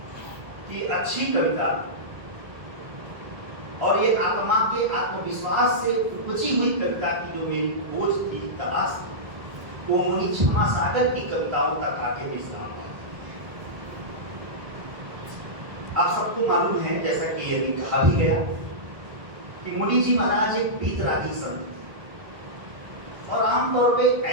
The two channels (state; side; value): late; left; 1.5 ms